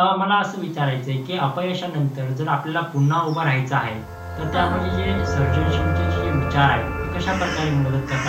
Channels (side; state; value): both; identical; correlation 1.00